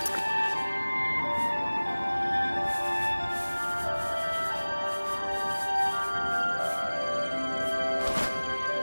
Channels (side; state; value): both; inverted; correlation -1.00